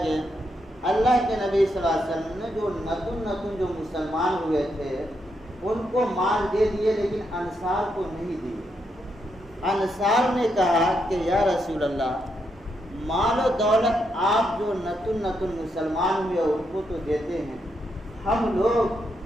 اللہ کے نبی صلی اللہ علیہ وسلم نے جو نتن جو مسلمان ہوئے تھے ان کو مال دے دیے، لیکن انصار کو نہیں دیے۔ انصار نے کہا کہ یا رسول اللہ، مال و دولت آپ جو نتن مسلمان ہوئے ان کو تو دیتے ہیں، ہم لوگ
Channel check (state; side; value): normal; both; correlation 0.80